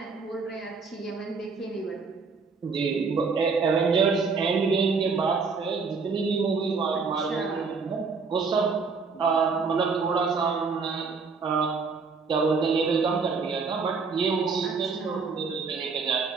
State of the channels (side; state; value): left; quieter; 4.8 dB